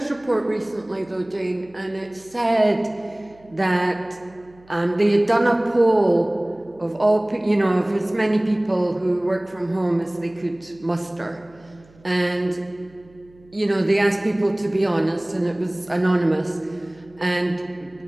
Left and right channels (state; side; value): noise; right; hum, 28 dB below the sound